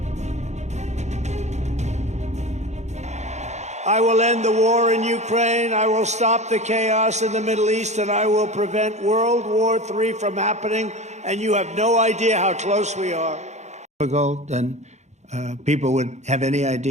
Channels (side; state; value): left; late; 0.33 ms